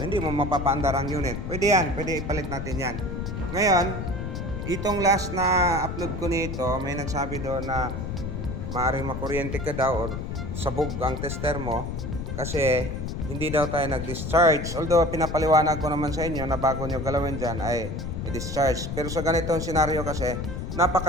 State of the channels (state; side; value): noise; left; rumble, 5 dB below the sound